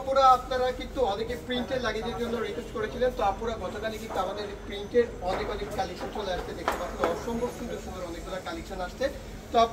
আপুরা, আপনারা কিন্তু অনেকে প্রিন্টের লাগেজের জন্য রিকোয়েস্ট করেছিলেন। তো আপুরা গতকালই কিন্তু আমাদের প্রিন্টের অনেক কালেকশন চলে আসছে, দেখতে পাচ্ছেন অসম্ভব সুন্দর সুন্দর অনেকগুলো কালেকশন আসছে। তো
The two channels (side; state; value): both; identical; correlation 1.00